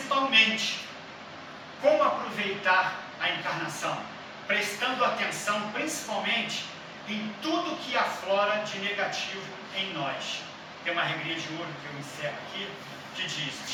como aproveitar a encarnação? Prestando atenção principalmente em tudo que aflora de negativo em nós. Tem uma regrinha de ouro que eu encerro aqui, que diz:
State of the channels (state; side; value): identical; both; correlation 1.00